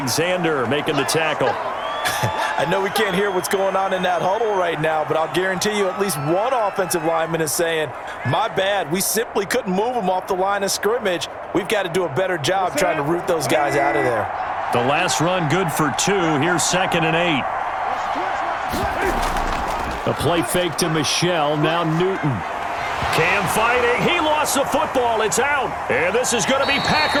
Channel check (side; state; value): both; identical; correlation 1.00